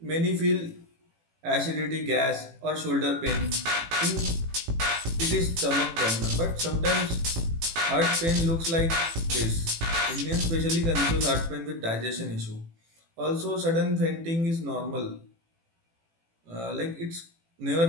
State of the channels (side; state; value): left; late; 18 ms